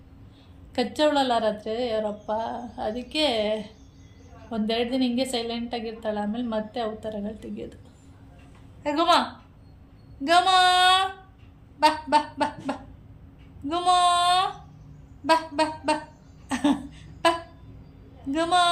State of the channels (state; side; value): identical; both; correlation 1.00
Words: ಕಚ್ಚವಳಲ್ಲ ರಾತ್ರಿ ಅವರಪ್ಪ, ಅದಕ್ಕೆ ಒಂದೆರಡು ದಿನ ಹಿಂಗೆ ಸೈಲೆಂಟಾಗಿರ್ತಾಳೆ. ಆಮೇಲೆ ಮತ್ತೆ ಅವತಾರಗಳು ತೆಗಿಯೋದು. ಗುಮ ಬಾ ಬಾ ಬಾ ಬಾ ಗುಮ ಬಾ ಬಾ ಬಾ ಬಾ ಗುಮ.